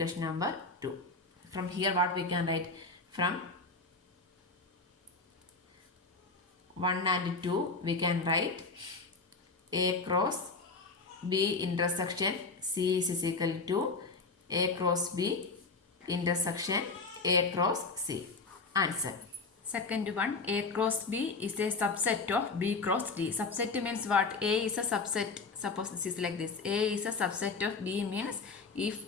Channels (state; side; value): quieter; right; 4.0 dB